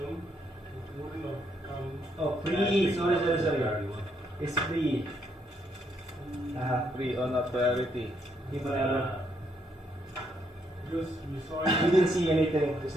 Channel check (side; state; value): both; normal; correlation 0.74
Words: It wouldn't have come. Oh, free. Sorry. Priority 1. It's free. Free or not priority. Gimana? Because you saw You it. didn't see anything